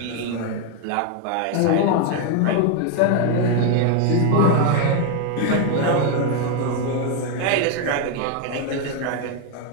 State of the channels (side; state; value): both; different; correlation 0.01